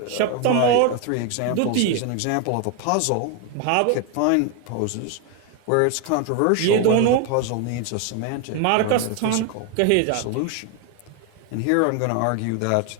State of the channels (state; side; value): different; both; correlation 0.01